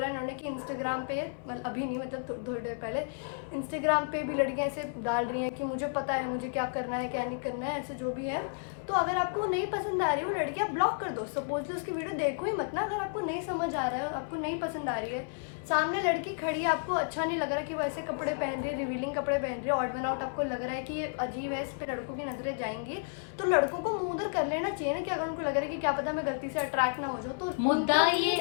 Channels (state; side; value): silent; right; 57 dB below the other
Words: इन्होंने कि इंस्टाग्राम पे, मतलब अभी नहीं, मतलब थोड़ी देर पहले इंस्टाग्राम पे भी लड़कियां ऐसे डाल रही हैं कि मुझे पता है मुझे क्या करना है क्या नहीं करना है, ऐसे जो भी है। तो अगर आपको वो नहीं पसंद आ रही है वो लड़की, आप ब्लॉक कर दो। सपोजली उसकी वीडियो देखो ही मत ना, अगर आपको नहीं समझ आ रहा है, आपको नहीं पसंद आ रही है, सामने लड़की खड़ी है, आपको अच्छा नहीं लग रहा कि वो ऐसे कपड़े पहन रही है, रिवीलिंग कपड़े पहन रही है, ऑड वन आउट आपको लग रहा है कि अजीब है, इस पे लड़कों की नजरें जाएंगी, तो लड़कों को मुंह उधर कर लेना चाहिए ना, कि अगर उनको लग रहा है कि क्या पता मैं गलती से अट्रैक्ट ना हो जाऊँ, तो मुद्दा ये